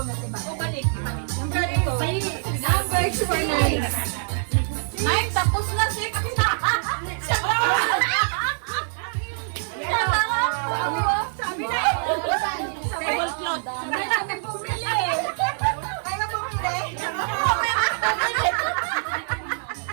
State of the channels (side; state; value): left; silent; digital silence